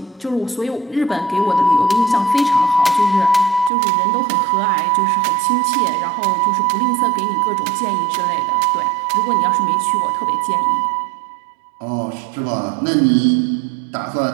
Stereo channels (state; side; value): drops out; left; at 3.7 s